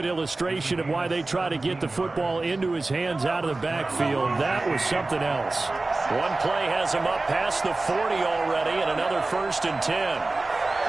illustration of why they try to get the football into his hands out of the backfield. That was something else. One play has him up past the 40 already, and another 1st and 10.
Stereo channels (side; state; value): left; quieter; 3.2 dB